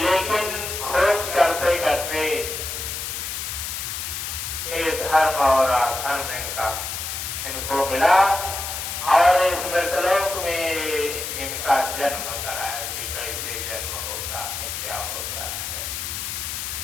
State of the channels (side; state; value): left; noise; hiss, 5 dB below the sound